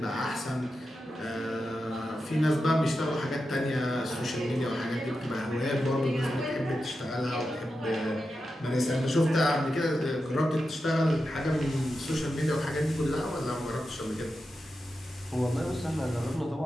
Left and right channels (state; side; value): normal; both; correlation 0.90